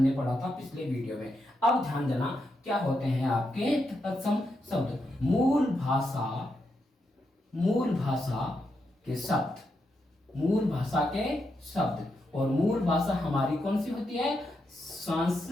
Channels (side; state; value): both; normal; correlation 0.83